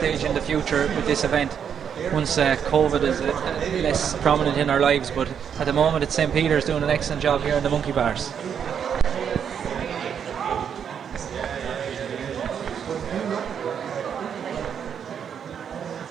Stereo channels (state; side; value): quieter; left; 7.9 dB